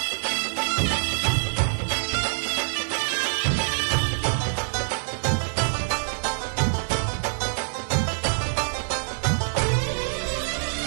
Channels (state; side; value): silent; left; 61 dB below the other